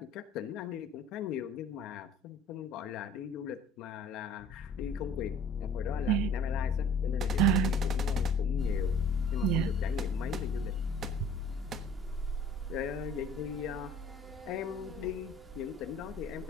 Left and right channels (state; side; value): normal; both; correlation 0.51